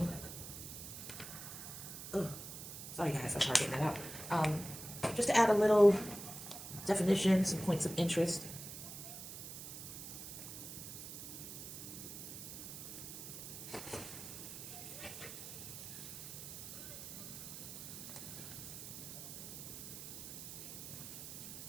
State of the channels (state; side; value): noise; right; hiss, 9 dB below the sound